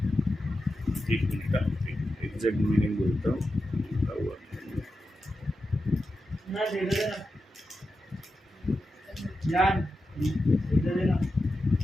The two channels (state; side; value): normal; both; correlation 0.90